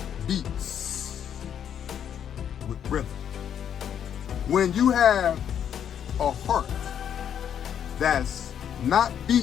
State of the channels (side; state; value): right; quieter; 9.0 dB